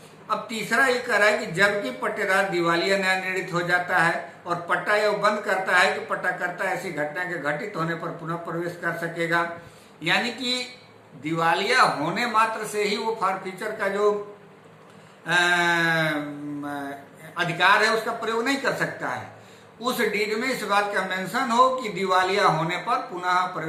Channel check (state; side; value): identical; both; correlation 1.00